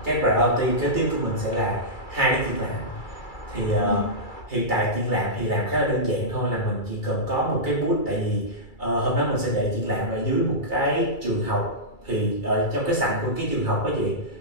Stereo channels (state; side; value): late; right; 2.3 ms